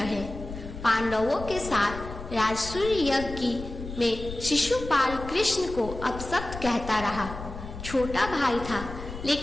पांडवों के साथ राजसूय यज्ञ में शिशुपाल कृष्ण को अपशब्द कहता रहा। छोटा भाई था,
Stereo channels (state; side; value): noise; left; rumble, 10 dB below the sound